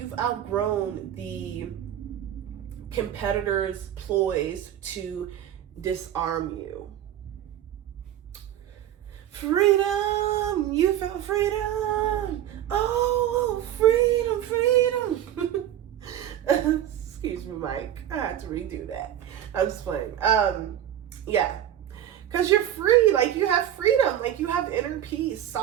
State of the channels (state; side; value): quieter; left; 11.3 dB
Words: outgrown the competitors' ploys to disarm you. Freedom! You felt freedom! Oh, freedom! Excuse me, Mike. I had to redo that. I'm just playing. Yeah. Because you're free. Like, you have freedom. Like, you have inner peace,